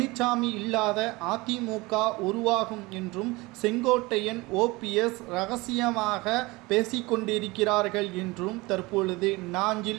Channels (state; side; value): quieter; left; 22.8 dB